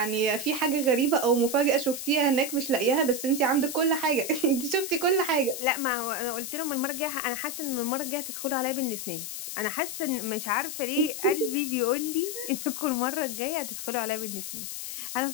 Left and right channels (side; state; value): left; noise; hiss, 6 dB below the sound